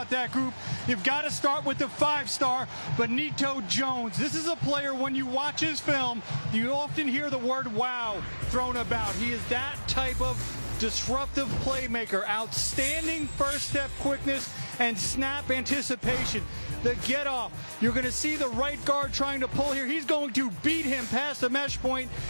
that group, you've got to start with the 5-star, Benito Jones. This is a player, when you watch his film, you often hear the word wow thrown about. He is that type of disruptive playmaker. Outstanding first step quickness and snap anticipation. The get off. You're going to see the right guard trying to pull here. He's going to beat him past the mesh point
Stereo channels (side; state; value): both; inverted; correlation -1.00